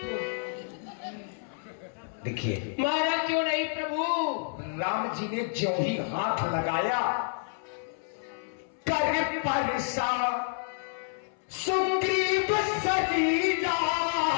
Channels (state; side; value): silent; right; 58 dB below the other